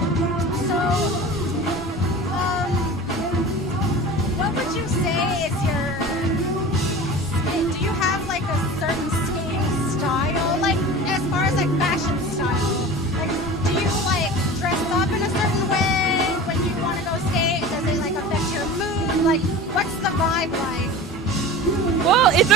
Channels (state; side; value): normal; both; correlation 0.35